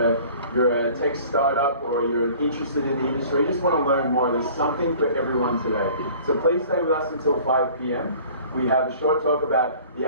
you're a tech startup or you're interested in the industry, you just want to learn more. There's something for everyone today. So please stay with us until 5 p.m. We have a short talk about the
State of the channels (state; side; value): inverted; both; correlation -0.48